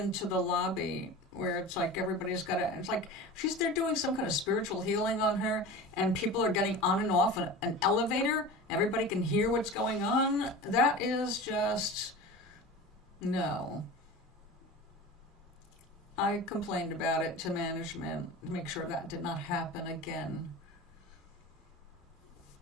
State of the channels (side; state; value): both; normal; correlation 0.33